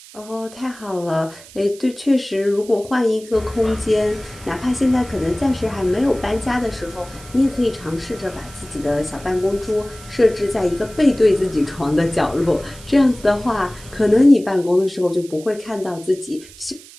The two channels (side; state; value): right; noise; hiss, 20 dB below the sound